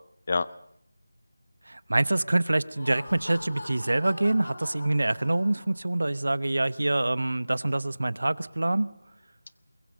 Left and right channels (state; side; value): inverted; both; correlation -0.99